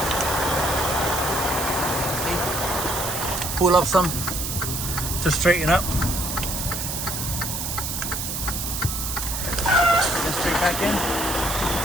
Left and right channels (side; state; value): right; noise; hiss, 3 dB below the sound